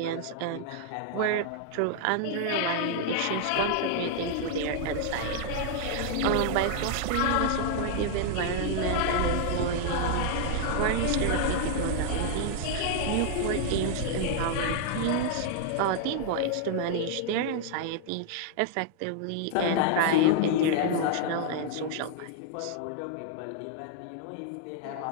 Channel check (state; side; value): different; both; correlation 0.00